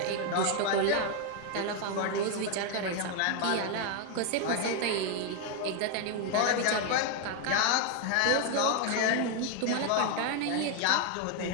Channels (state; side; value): different; both; correlation 0.01